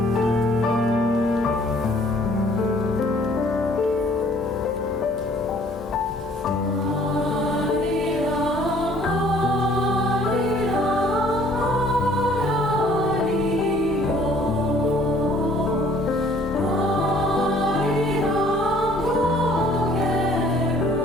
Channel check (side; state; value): both; normal; correlation 0.57